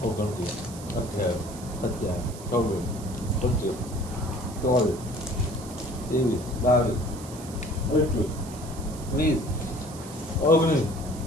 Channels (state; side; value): noise; right; hiss, 16 dB below the sound